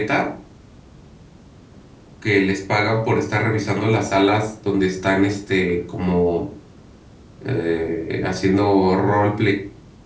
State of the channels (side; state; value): both; identical; correlation 1.00